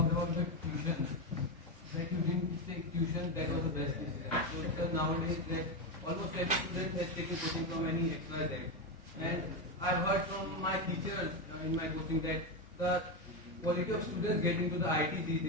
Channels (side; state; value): both; normal; correlation 0.11